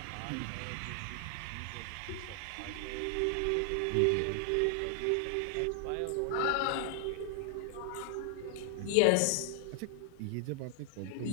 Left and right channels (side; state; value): both; different; correlation 0.00